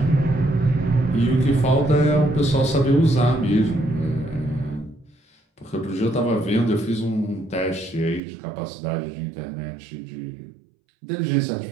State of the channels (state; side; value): drops out; left; at 8.2 s